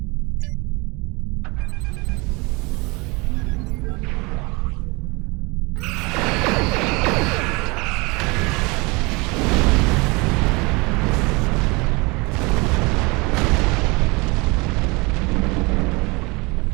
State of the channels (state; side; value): quieter; left; 26.5 dB